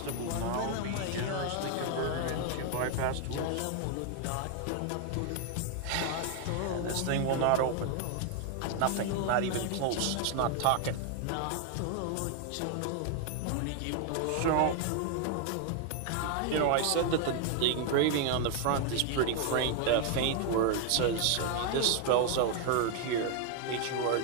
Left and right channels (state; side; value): different; both; correlation 0.00